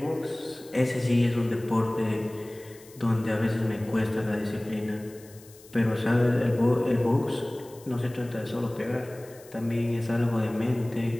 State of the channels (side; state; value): left; noise; hiss, 23 dB below the sound